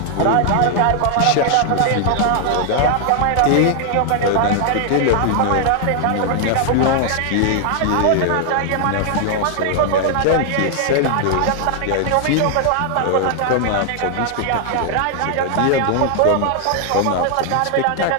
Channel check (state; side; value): different; both; correlation 0.00